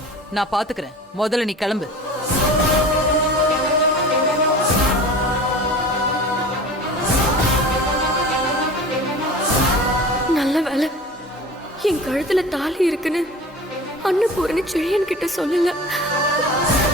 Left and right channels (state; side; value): normal; both; correlation 0.38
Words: நான் பாத்துக்கிறேன். முதல்ல நீ கிளம்பு. நல்ல வேலை என் கழுத்துல தாலி இருக்குன்னு அன்னபூரணி செழியன் கிட்ட சொல்லல.